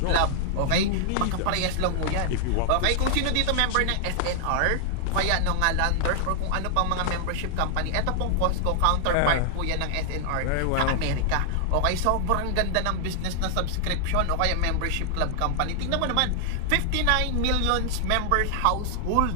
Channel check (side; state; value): both; different; correlation 0.00